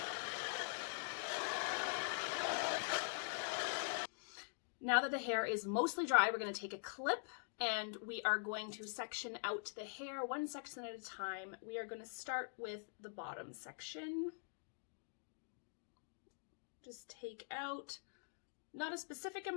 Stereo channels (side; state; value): right; silent; digital silence